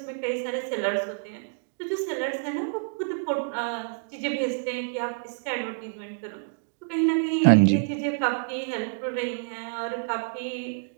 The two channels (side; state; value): left; silent; digital silence